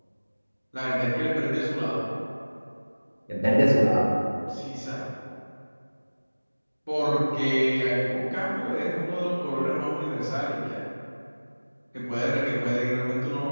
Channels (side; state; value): both; inverted; correlation -1.00